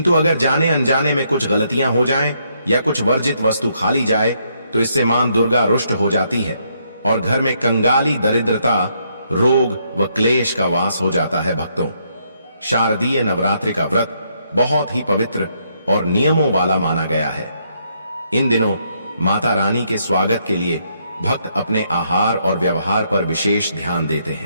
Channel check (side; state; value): both; inverted; correlation -0.74